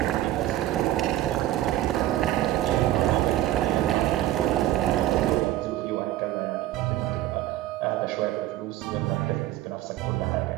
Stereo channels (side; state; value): left; quieter; 14.4 dB